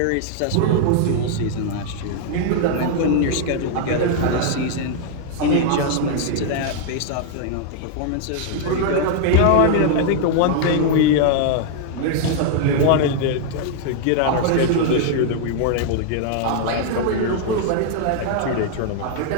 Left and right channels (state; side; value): different; both; correlation -0.01